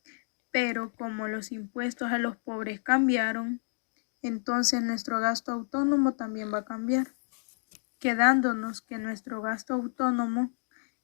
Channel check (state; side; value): silent; right; 58 dB below the other